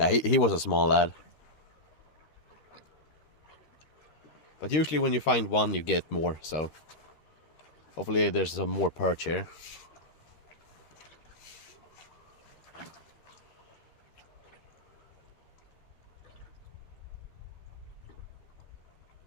he was a small lad. But usually when you find one you get more, so hopefully there's some more perch here.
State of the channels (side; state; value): right; late; 13 ms